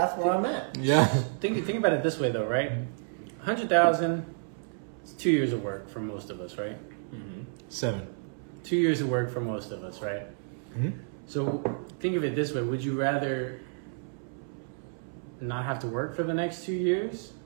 where I'm at. Yeah. think about it this way though, right? 100,000 is 2 years of work for most of us, right? 7. 2 years of work for most of us, right? So think of it this way: would you rather not have to work for the next 2 years,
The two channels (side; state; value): left; silent; 58 dB below the other